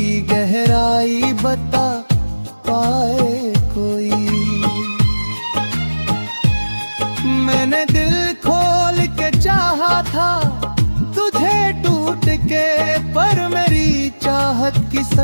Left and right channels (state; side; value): inverted; both; correlation -1.00